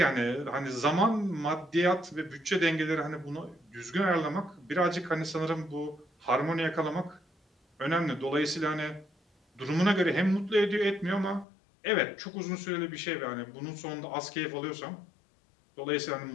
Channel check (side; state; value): right; drops out; at 11.5 s